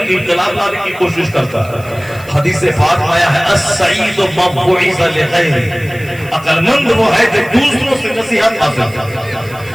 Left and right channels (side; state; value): right; noise; hiss, 22 dB below the sound